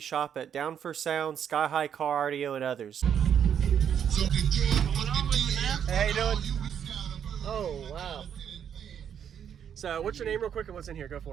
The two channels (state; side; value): quieter; left; 8.5 dB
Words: at Down for Sound, SkyHigh Car Audio, and others. What's going on with you, man? Hey, how you doing? Oh, wow. So, what's your name real quick and what's in here? Go